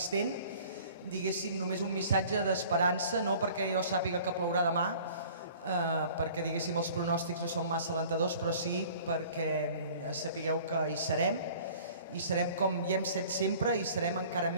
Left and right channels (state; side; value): inverted; both; correlation -0.48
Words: diguéssim, només un missatge d'esperança, no perquè jo sàpiga que plourà demà, perquè diguéssim els pronòstics no són massa alentadors, però sí perquè sapigueu que hi serem com hi hem set sempre, i serem encara